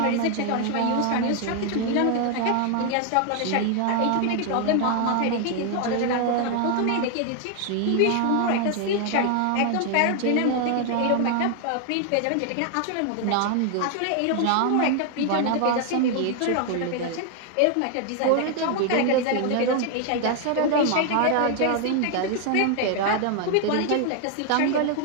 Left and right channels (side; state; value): both; different; correlation 0.00